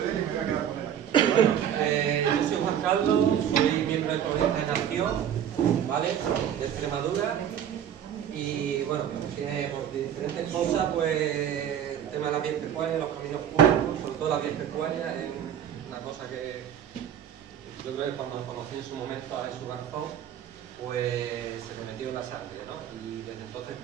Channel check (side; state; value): left; quieter; 9.5 dB